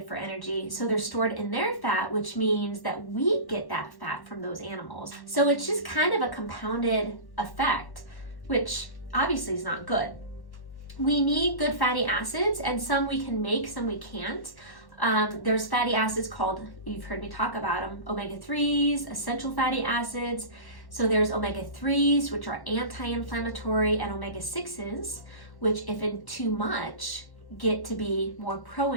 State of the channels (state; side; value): late; right; 1.1 ms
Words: for energy, so they're stored in their fat, which means that we get that fat from those animals. So it's just kind of a compounded effect, which obviously is not good. We need good fatty acids, and some we can make, some we can't. There's fatty acids called, you've heard me talk about them, omega-3s, essential fatty acids. So there's omega-3s, which are anti-inflammatory, and omega-6s, which if in too much, get to be more